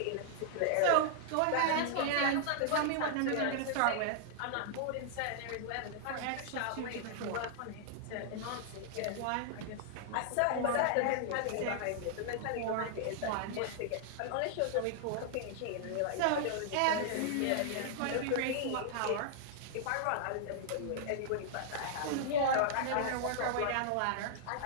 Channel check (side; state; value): both; different; correlation -0.01